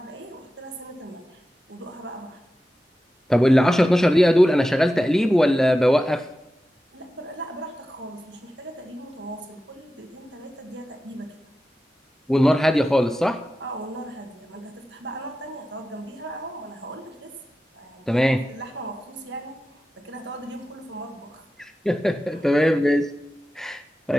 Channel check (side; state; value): both; normal; correlation 0.92